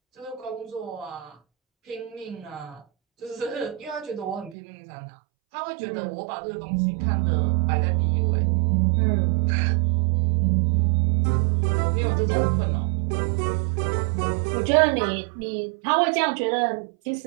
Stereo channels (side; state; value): left; drops out; at 4.5 s